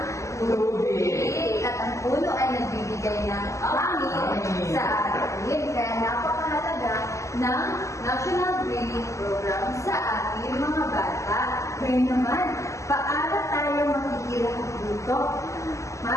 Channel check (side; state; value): right; late; 0.15 ms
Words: Tubig. at ang puno ay nagbibigay ng hangin sa atin. Kaya napakahalaga ng National Greening Program sa ating mga bata. Ngayon naman, paano tayo makikilahok dito?